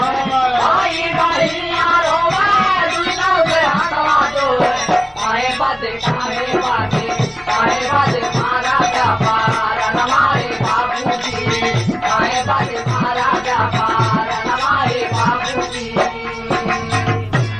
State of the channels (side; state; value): both; identical; correlation 1.00